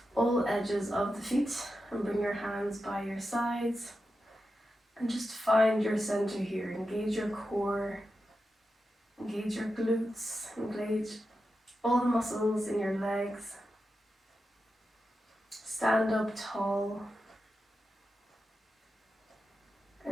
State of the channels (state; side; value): normal; both; correlation 0.90